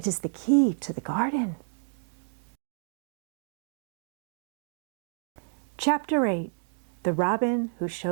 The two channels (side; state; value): left; silent; digital silence